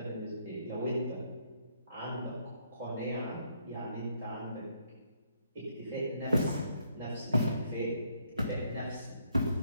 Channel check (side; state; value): both; inverted; correlation -0.71